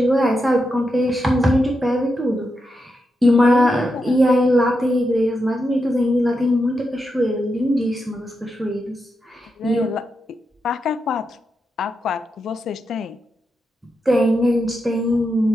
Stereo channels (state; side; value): normal; both; correlation 0.86